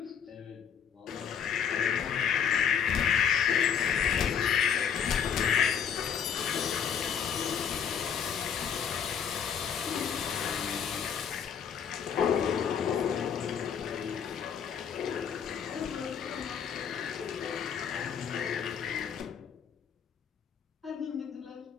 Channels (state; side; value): quieter; right; 7.8 dB